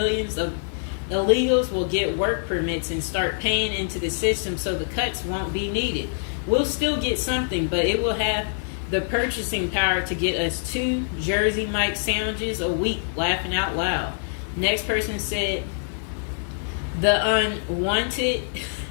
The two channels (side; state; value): right; silent; digital silence